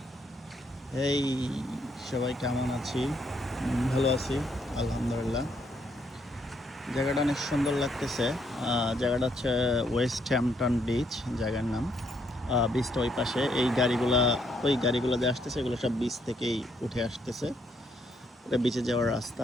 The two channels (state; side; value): normal; both; correlation 0.72